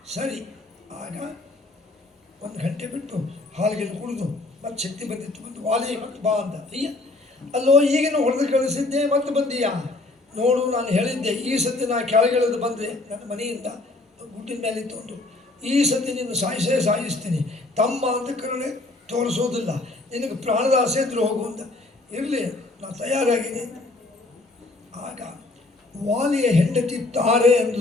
ಸರಿ. ಆಗ 1 ಗಂಟೆ ಬಿಟ್ಟು ಹಾಲಿಗೆ ಕುಡಿದು ಮತ್ತೆ ಶಕ್ತಿ ಬಂದಿತ್ತು, ಬಂದು ವಾಲಿ ಮತ್ತೆ ಬಾ ಅಂತ. ಅಯ್ಯ, ಅಲ್ಲೋ ಈಗಿನ ಹೊಡೆದು ಕಳಿಸಿದ್ದೆ, ಮತ್ತೆ ಬಂದೀಯಾ? ನೋಡು, ನಾನು ಹೇಳಿದ್ದೆ ಈ ಸತಿ ನಾನು ಕೆಳಗಿಳಿದು ಬಂದರೆ ನನ್ನ ಮನೆಯಿಂದ ಗುಡ್ಡಿನ ಮೇಲೆ ತಂದು ಈ ಸತಿ ನಿನ್ನ ಸಾಯಿಸ್ತೀನಿ, ತಮ್ಮ ಅಂತ ಕರುಣೆ ತೋರಿಸೋದಿಲ್ಲ, ನಿನಗೆ ಪ್ರಾಣದ ಆಸೆ ಇದ್ರೂ ಹೋಗು ಅಂತ. ಇರಲಿ, ನಾನು ತಯಾರಾಗಿದ್ದೀನಿ. ಆಗ ವಾಲಿಯ ಹೆಂಡತಿ ತಾರೆ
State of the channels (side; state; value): right; quieter; 3.1 dB